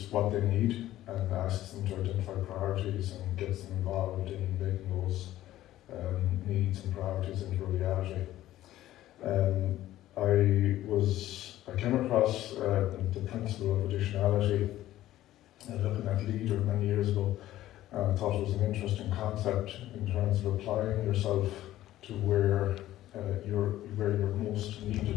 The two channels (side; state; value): right; quieter; 14.2 dB